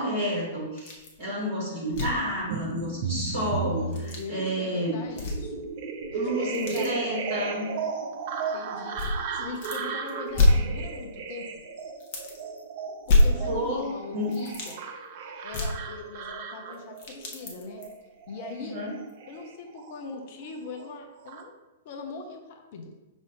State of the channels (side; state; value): both; inverted; correlation -0.49